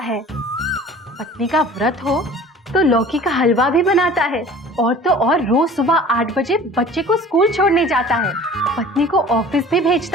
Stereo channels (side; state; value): both; normal; correlation 0.45